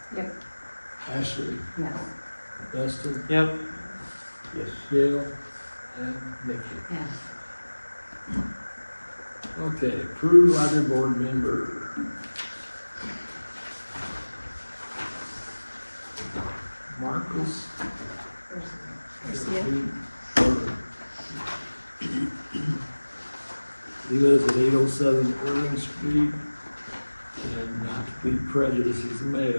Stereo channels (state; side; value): inverted; both; correlation -1.00